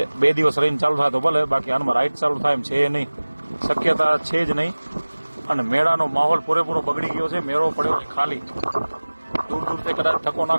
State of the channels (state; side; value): inverted; both; correlation -1.00